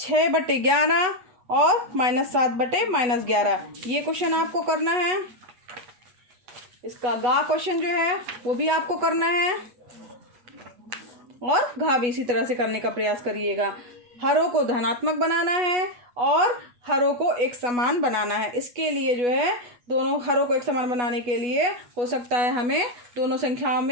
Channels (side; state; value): left; late; 8.2 ms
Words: और -7/-11, ये क्वेश्चन आपको करना है। इसका गा क्वेश्चन जो है वो भी आपको करना है और घा भी इसी तरह से करने का प्रयास करिएगा। हरों को धनात्मक बनाना है और हरों को एक समान बनाना है। इसके लिए जो है दोनों हरों को एक समान बनाने के लिए हो सकता है हमें दोनों संख्याओं